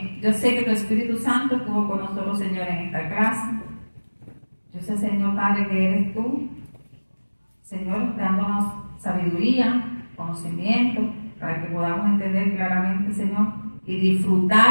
yo sé que tu Espíritu Santo estuvo con nosotros, Señor, en esta clase. Yo sé, Señor Padre, que eres tú, Señor, dándonos sabiduría, conocimiento, para que podamos entender claramente, Señor, y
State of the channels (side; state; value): both; inverted; correlation -1.00